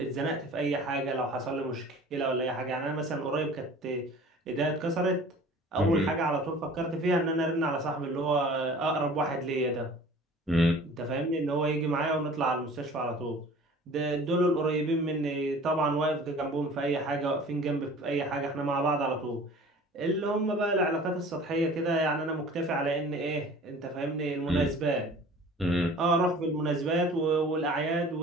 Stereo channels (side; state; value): both; normal; correlation 0.45